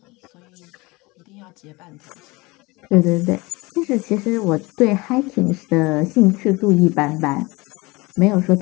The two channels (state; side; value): quieter; right; 23.8 dB